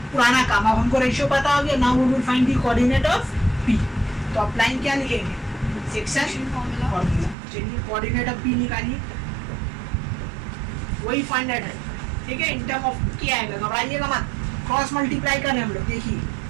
पुराना काम, अब हमको रेशियो पता हो गया, now we will find the coordinate of P। तो आप लाइन क्या लिखेंगे, सेक्शन फॉर्मूला, चलिए कोऑर्डिनेट ऑफ P निकालिए, वही फाइंड आउट है, ठीक है। इन टर्म ऑफ क्या आएगा, घबराइएगा मत, क्रॉस मल्टीप्लाई करें हम लोग, देखिए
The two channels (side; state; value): left; drops out; at 7.4 s